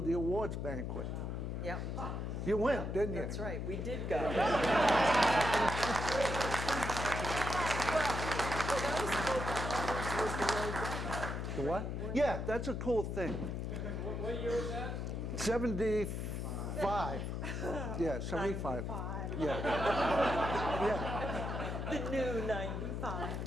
the awards banquet. Yep. You went, didn't you? That's right. We did go. The what? Yeah, that's a cool thing. What year was that? 75. Yeah, 75. Yeah. Yeah. The new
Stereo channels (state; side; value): noise; left; hum, 3 dB below the sound